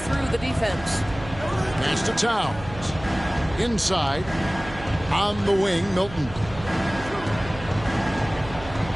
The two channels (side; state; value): right; noise; hum, 14 dB below the sound